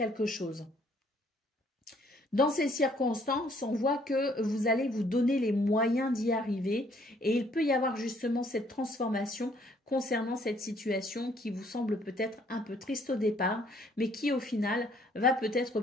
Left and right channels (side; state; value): both; normal; correlation 0.64